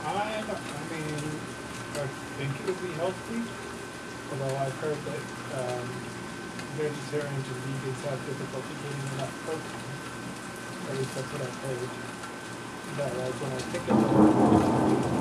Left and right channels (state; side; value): identical; both; correlation 1.00